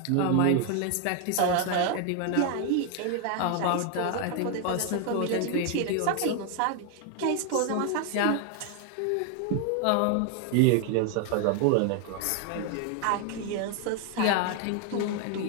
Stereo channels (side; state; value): both; different; correlation 0.00